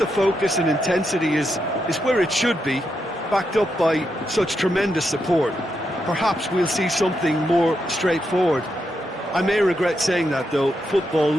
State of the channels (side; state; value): both; normal; correlation 0.83